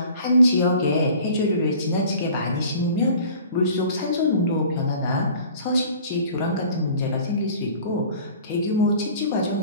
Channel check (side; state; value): both; inverted; correlation -0.46